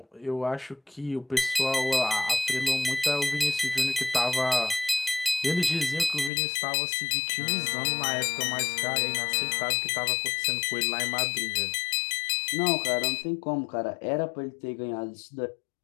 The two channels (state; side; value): drops out; right; at 6.3 s